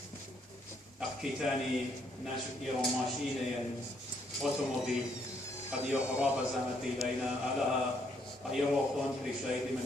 أحكيتاني ناشف إيرو ماشيني أوتوموبيل قد يخراب زمتي لينا على أيروخون كريشايد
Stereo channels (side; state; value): both; normal; correlation 0.71